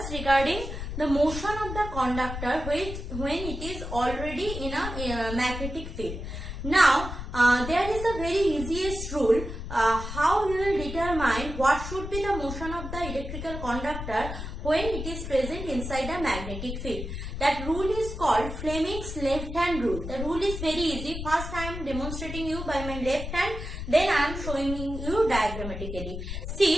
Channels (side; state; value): left; noise; rumble, 7 dB below the sound